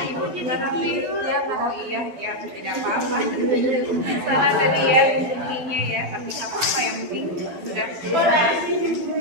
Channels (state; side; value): late; left; 12 ms